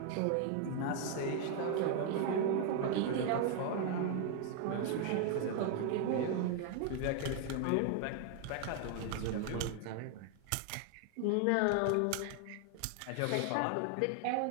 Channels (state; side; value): different; both; correlation 0.00